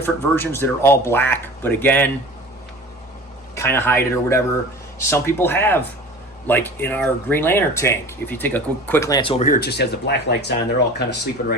versions that are all black, but again, kind of hide it or whatever. Some people have, like in our Green Lantern tank, if you take a quick glance over here, it just has the black lights on. They're all kind of sleeping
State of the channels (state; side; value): normal; both; correlation 0.39